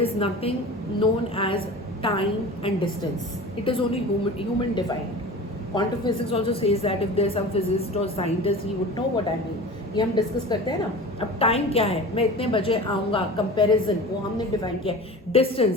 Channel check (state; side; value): normal; both; correlation 0.36